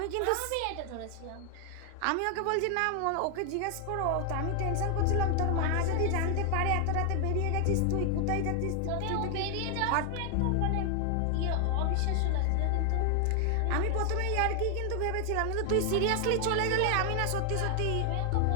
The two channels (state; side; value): different; both; correlation 0.00